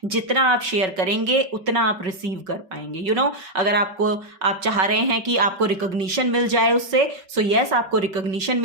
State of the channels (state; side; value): late; left; 5.4 ms